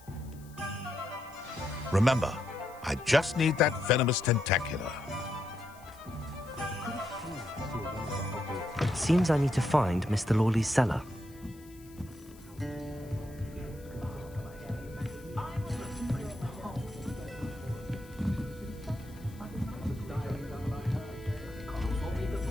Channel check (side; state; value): left; noise; hiss, 24 dB below the sound